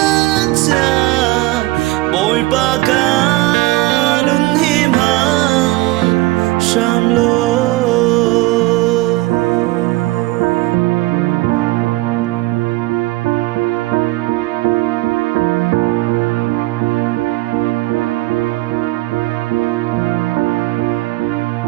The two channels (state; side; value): quieter; left; 19.8 dB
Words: bồi ba ca đứng hiểm hằng Sham lo